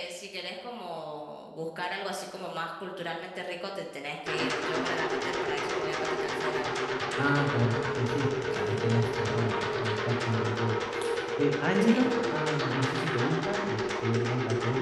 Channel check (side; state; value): both; identical; correlation 1.00